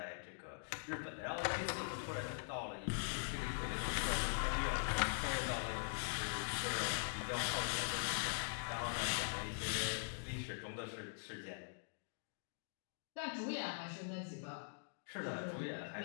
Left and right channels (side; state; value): right; silent; digital silence